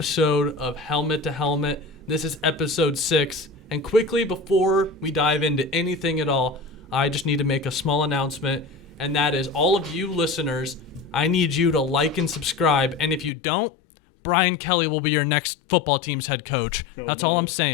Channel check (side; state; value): right; drops out; at 13.3 s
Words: of Helmet to Helmet. This is episode 6. And quickly, before we dive into anything at all, I just need to make a small announcement. And that is, all of you listeners, I need you to like and subscribe. And if you don't, Brian Kelly will be your next football team's head coach. That's all I'm